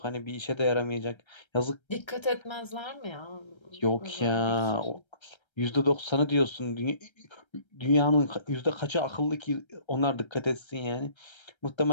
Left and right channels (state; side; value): late; right; 1.3 ms